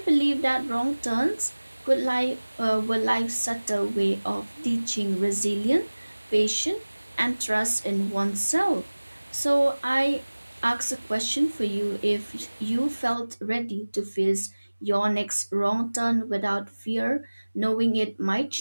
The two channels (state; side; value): inverted; both; correlation -1.00